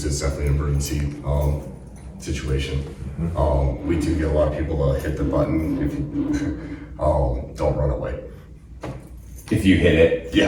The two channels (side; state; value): both; identical; correlation 1.00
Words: It's definitely an emergency situation. We do get a lot of people to hit the button if you don't run away. If you hit it,